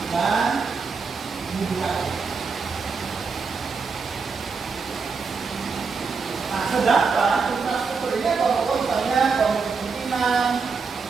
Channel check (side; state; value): left; quieter; 5.0 dB